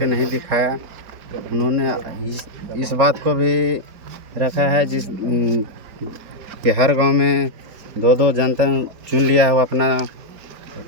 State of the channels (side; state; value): left; late; 4.6 ms